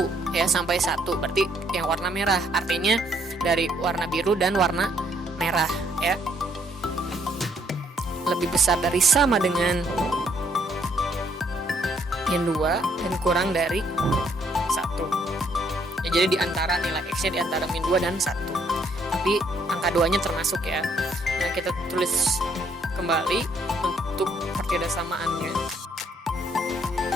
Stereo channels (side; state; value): both; normal; correlation 0.68